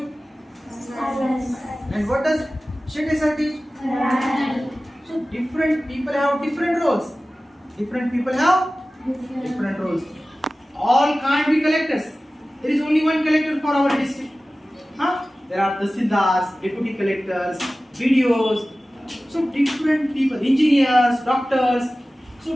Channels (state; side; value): normal; both; correlation 0.96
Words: And what does Shinde sir teach? So different people have different roles. Different people have different roles. All can't be collectors. There is only one collector for our district. Huh? There are tahsildars, deputy collectors, BDOs. So different people, engineers, doctors. So